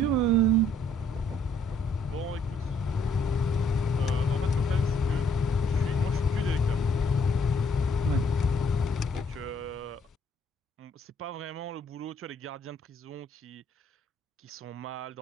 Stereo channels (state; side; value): normal; both; correlation 0.67